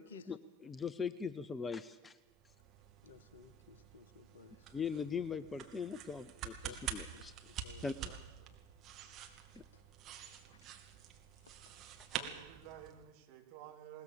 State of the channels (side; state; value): both; normal; correlation 0.52